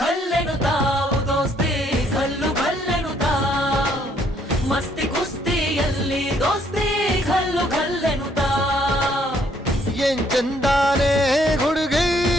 ಘಲ್ಲೆನುತಾವ್ ದೋಸ್ತಿ ಘಲ್ಲು ಘಲ್ಲೆನುತಾವ್ ಮಸ್ತಿ ಕುಸ್ತಿಯಲ್ಲಿ ದೋಸ್ತಿ ಘಲ್ಲು ಘಲ್ಲೆನುತಾವ್ ಏನ್ ಚಂದಾನೆ ಹುಡುಗಿ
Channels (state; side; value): normal; both; correlation 0.67